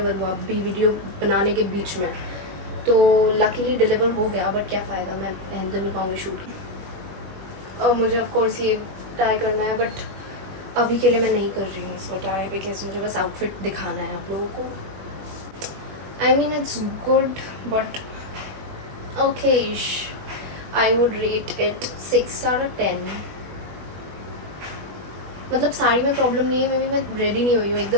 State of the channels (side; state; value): left; late; 20 ms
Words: हुआ, अभी वीडियो बनाने के बीच में। तो लकीली डिलीवर हो गया, बट क्या फ़ायदा, मैं पहन तो नहीं पाऊँगी शूट। और मुझे ऑफकोर्स ये ट्राई करना है, बट अभी के लिए मैं नहीं कर रही हूँ इसको ट्राई बिकॉज मुझे बस आउटफिट दिखाना है आप लोगों को। I mean it's good but okayish. I would rate it 6 out of 10. मतलब साड़ी में प्रॉब्लम नहीं है, मे बी मैं रेडी नहीं हुई हूँ,